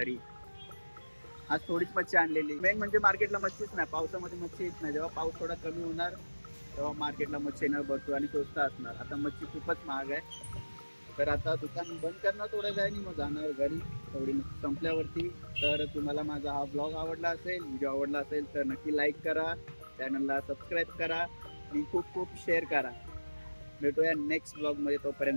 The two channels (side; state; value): both; inverted; correlation -1.00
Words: आज थोडीच मच्छी आणलेली. मेन म्हणजे मार्केटला मच्छीच नाही, पावसामध्ये मच्छी येत नाही. जेव्हा पाऊस थोडा कमी होणार तेव्हा मार्केटला मच्छी येणार भरपूर आणि स्वस्त असणार. आता मच्छी खूपच महाग आहे. तर आता दुकान बंद करणार थोड्या वेळाने, मग जाणार घरी थोडी संपल्यावरती. तर तुम्हाला माझा हा ब्लॉग आवडला असेल, व्हिडिओ आवडला असेल तर नक्की लाईक करा, चॅनलला सबस्क्राईब करा आणि खूप शेअर करा. भेटूया नेक्स्ट ब्लॉग मध्ये.